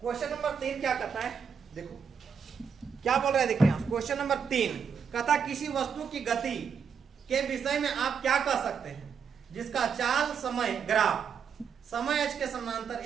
क्वेश्चन नंबर 3 क्या कहता है, देखो क्या बोल रहा है, देखिए क्वेश्चन नंबर 3 कहता किसी वस्तु की गति के विषय में आप क्या कह सकते हैं जिसका चाल समय ग्राफ समय अक्ष के समानांतर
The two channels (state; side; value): quieter; left; 6.6 dB